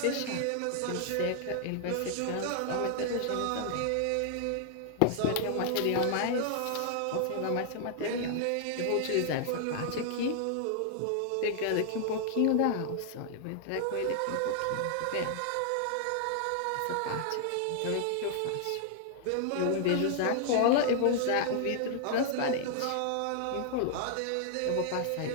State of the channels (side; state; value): both; different; correlation 0.00